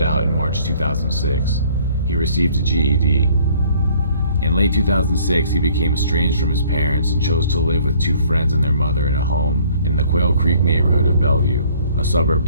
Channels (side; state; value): both; inverted; correlation -0.58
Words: out in March 2006. He received a GED. In late 2006, he became estranged from his parents and chose to live with 2 friends and their mother in a home in the Quail Creek neighborhood of Bellevue, a suburb